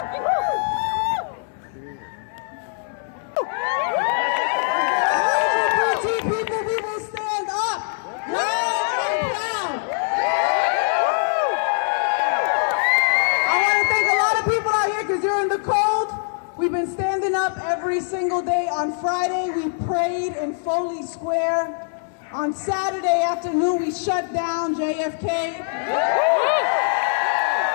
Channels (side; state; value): right; silent; 64 dB below the other